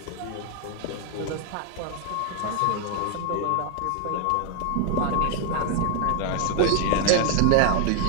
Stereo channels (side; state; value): both; different; correlation 0.00